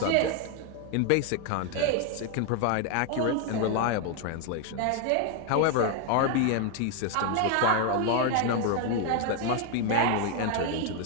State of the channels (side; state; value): both; different; correlation 0.01